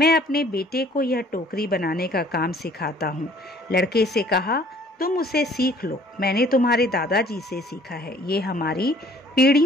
अपने बेटे को यह टोकरी बनाने का काम सिखाता हूँ। लड़के से कहा, तुम उसे सीख लो, मैंने तुम्हारे दादाजी से सीखा है। ये हमारी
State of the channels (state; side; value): normal; both; correlation 0.56